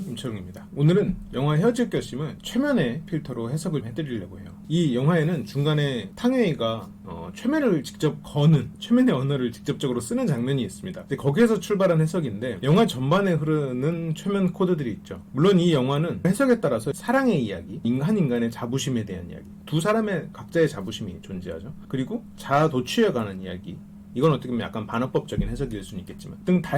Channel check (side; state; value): both; identical; correlation 1.00